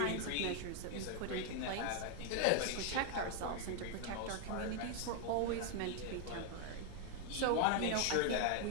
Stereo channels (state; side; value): different; both; correlation 0.00